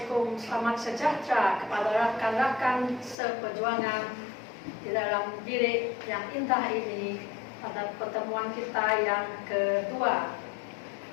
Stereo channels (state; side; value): drops out; right; at 3.2 s